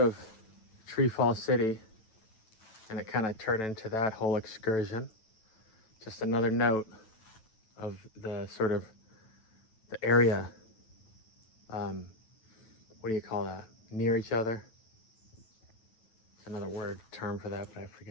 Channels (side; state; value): right; late; 9.2 ms